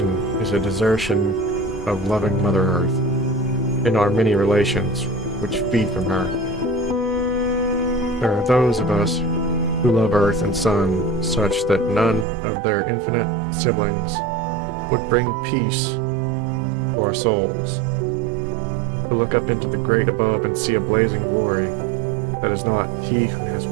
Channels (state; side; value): drops out; left; at 12.2 s